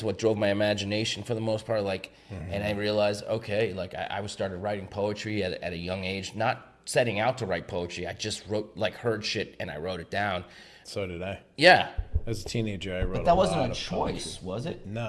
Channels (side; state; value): both; identical; correlation 1.00